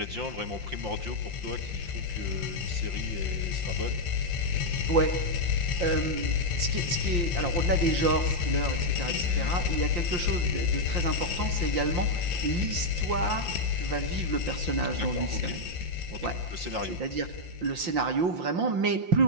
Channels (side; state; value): left; late; 5.7 ms